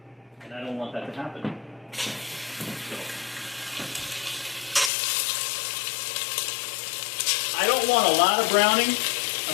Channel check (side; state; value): right; drops out; at 4.9 s